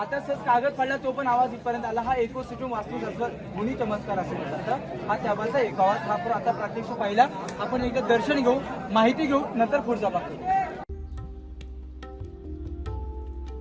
सहज कागद पडला तो पण आवाज इथपर्यंत आला. हा इकोसिस्टम वास्तुशास्त्र गुणी चमत्कार असं म्हणतात. हा त्याबाचा एक आवाज. हा आता प्रत्यक्ष पाहिला. आपण एकदा दर्शन घेऊ, माहिती घेऊ, नंतर पुढचा बघतो.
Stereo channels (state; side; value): identical; both; correlation 1.00